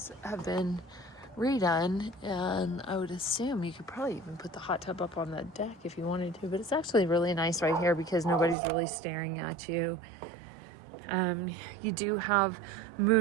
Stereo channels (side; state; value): left; drops out; at 8.6 s